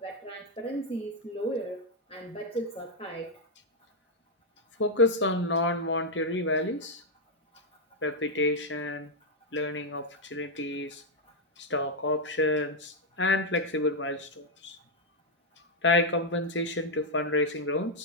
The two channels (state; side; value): normal; both; correlation 0.00